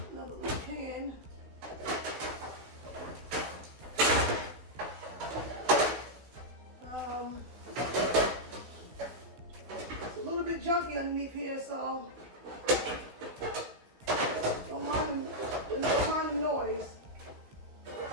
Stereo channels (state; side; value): late; left; 16 ms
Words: little pan. It's a little bit junky underneath here, so don't mind the noise.